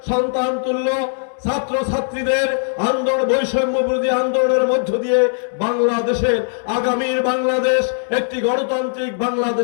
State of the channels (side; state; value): right; silent; 66 dB below the other